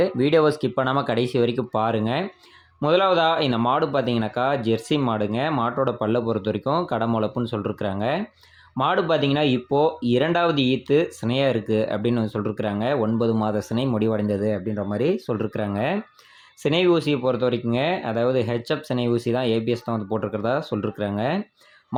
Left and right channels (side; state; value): both; identical; correlation 1.00